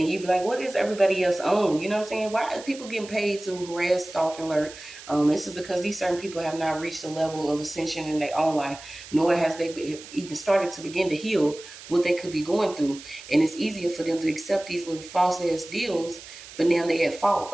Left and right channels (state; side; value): noise; right; hiss, 16 dB below the sound